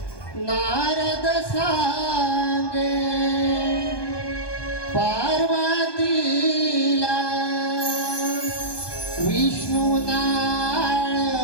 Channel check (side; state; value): right; late; 1.2 ms